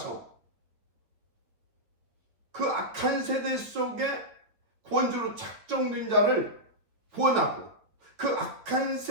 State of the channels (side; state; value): left; late; 8.8 ms